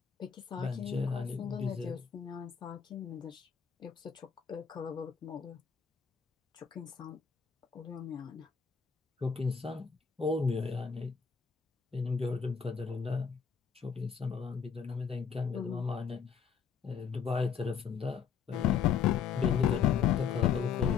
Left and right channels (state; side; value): quieter; right; 6.9 dB